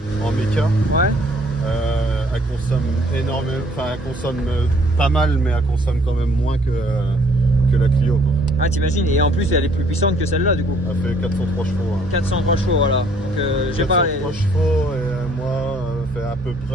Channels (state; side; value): normal; both; correlation 0.61